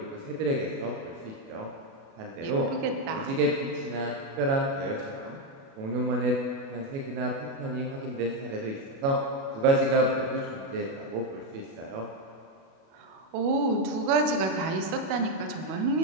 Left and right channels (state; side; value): late; left; 37 ms